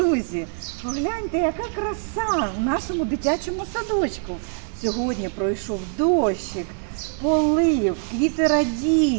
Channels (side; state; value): left; silent; 63 dB below the other